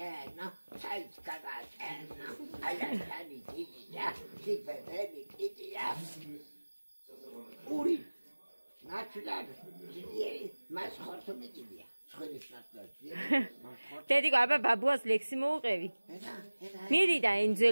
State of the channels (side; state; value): both; inverted; correlation -1.00